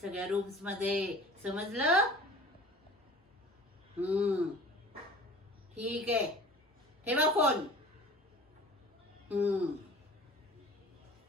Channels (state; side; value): normal; both; correlation 0.43